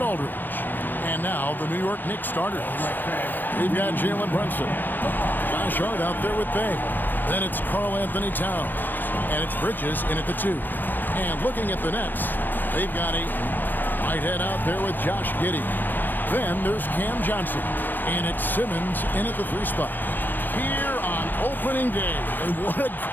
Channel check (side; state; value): right; late; 0.089 ms